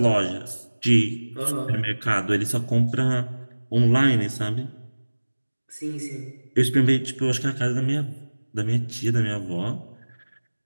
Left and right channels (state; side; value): inverted; both; correlation -1.00